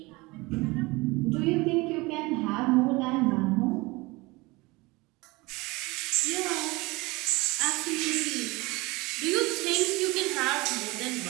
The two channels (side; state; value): left; quieter; 23.3 dB